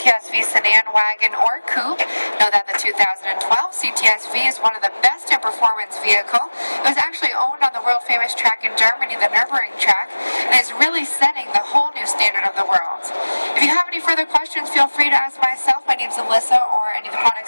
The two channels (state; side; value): inverted; both; correlation -1.00